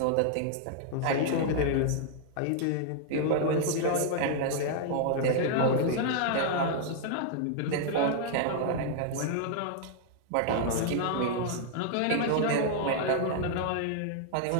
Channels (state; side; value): different; both; correlation -0.01